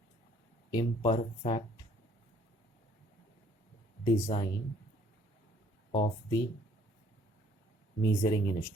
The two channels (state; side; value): normal; both; correlation 0.60